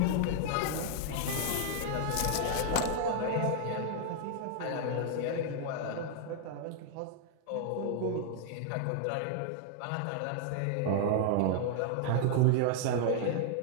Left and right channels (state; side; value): different; both; correlation -0.01